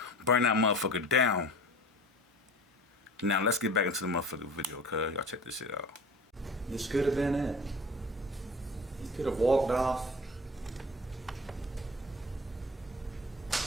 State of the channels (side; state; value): both; normal; correlation 0.39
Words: Burn that motherfucker down. Now let's get back into the motherfucking video, cuz. Y'all check this shit out. This could have been it. He could have walked off.